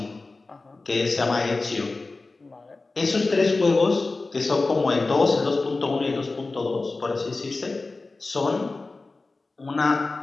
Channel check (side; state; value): right; quieter; 3.5 dB